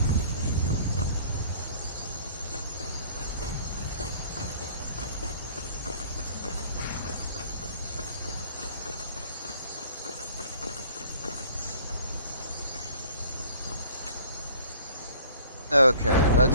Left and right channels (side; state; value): both; inverted; correlation -0.52